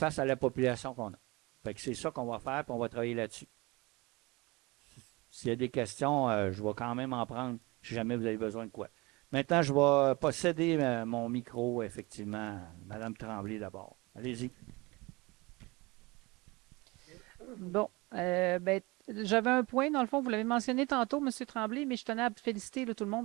à la population qu'on a. Fait que c'est ça qu'on va faire, puis on va travailler là-dessus. S'il y a des questions, je vais quand même en prendre si jamais vous avez besoin de quoi. Maintenant, je vais posséder mon micro, effectivement. Madame Tremblay, d'abord. Allez-y. Bon, j'avais un point, dans le fond, vous l'avez mentionné tantôt, M. Tremblay, mais je tenais à féliciter là, tout le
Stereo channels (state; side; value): quieter; left; 24.1 dB